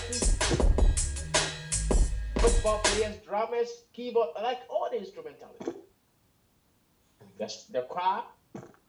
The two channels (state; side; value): identical; both; correlation 1.00